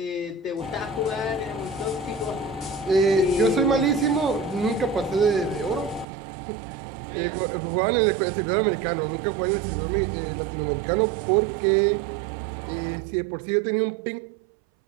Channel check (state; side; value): drops out; left; at 6.1 s